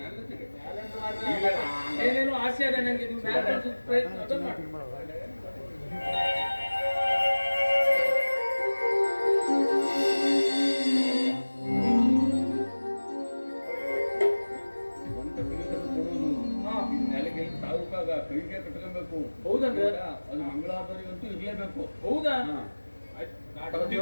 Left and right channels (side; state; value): both; inverted; correlation -1.00